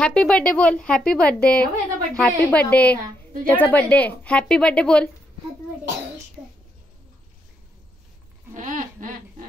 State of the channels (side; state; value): both; normal; correlation 0.78